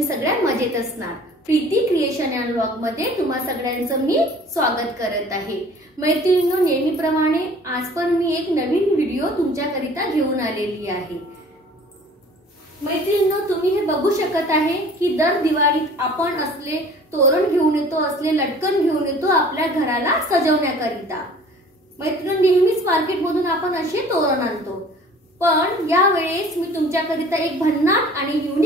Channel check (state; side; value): normal; both; correlation 0.48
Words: सगळ्या मजेत असणार। प्रीती क्रिएशन अँड व्लॉग मध्ये तुम्हा सगळ्यांचं मी स्वागत करत आहे। मैत्रिणींनो, नेहमीप्रमाणे आज पण मी एक नवीन व्हिडिओ तुमच्याकरिता घेऊन आलेली आहे। मैत्रिणींनो, तुम्ही हे बघू शकत आहे की दर दिवाळीत आपण असले तोरण घेऊन येतो, असले लटकन घेऊन येतो आपल्या घराला सजवण्याकरिता। मैत्रिणींनो, नेहमीच मार्केटमधून आपण असे तोरण आणतो, पण या वेळेस मी तुमच्याकरिता एक भन्नाट आणि